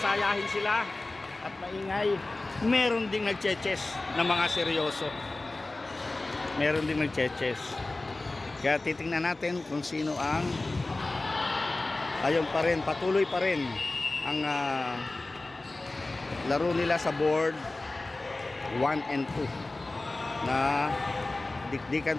sila at maingay, meron ding nagche-chess na mga seryoso. Meron ding nagche-chess. Kaya titingnan natin kung sino ang ayun pa rin, patuloy pa rin ang laro nila sa board 1 and 2 na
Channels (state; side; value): quieter; right; 3.0 dB